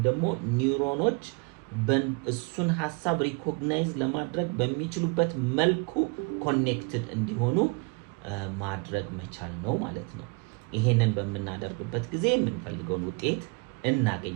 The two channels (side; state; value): left; quieter; 30.1 dB